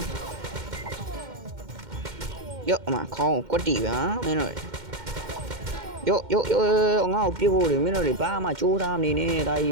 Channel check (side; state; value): left; late; 2.1 ms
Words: ်ယောအမခေါင်းကွက်တီပါမင်းတို့ယောငါ့ကိုပြဖို့လေမင်းတို့တွေဘာမှကြိုးစားမနေနဲ့ဒါကြီ